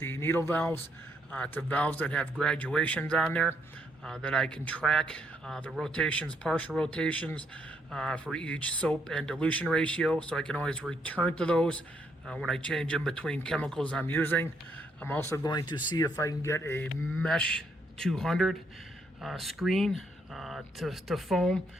needle valves to valves that have graduations on there that I can track the rotations, partial rotations for each soap and dilution ratio, so I can always return to those when I change in between chemicals I'm using. I'm also going to see if I can get a Mesh 200 screen to foam.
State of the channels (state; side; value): normal; both; correlation 0.73